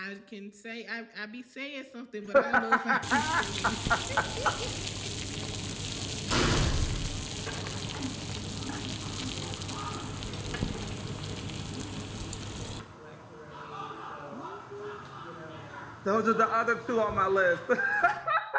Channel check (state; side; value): identical; both; correlation 1.00